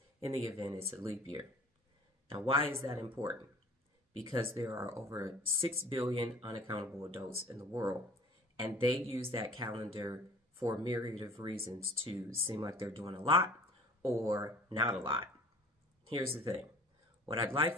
in the event it's a leap year. Now, why is that important? Because there are over 6 billion unaccountable adults in the world, and they use that calendar for a myriad of reasons to seem like they're doing a lot or not a lot. Here's the thing. What I'd like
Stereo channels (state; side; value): normal; both; correlation 0.48